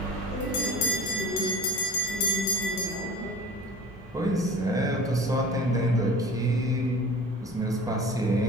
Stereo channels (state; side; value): normal; both; correlation 0.40